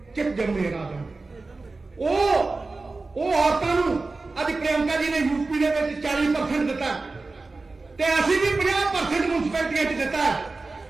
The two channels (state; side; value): quieter; left; 3.6 dB